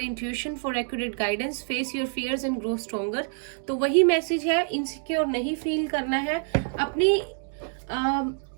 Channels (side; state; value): left; silent; 57 dB below the other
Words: for accurate guidance, face your fears and grow stronger. तो वही मैसेज है, इनसिक्योर नहीं फील करना है, अपनी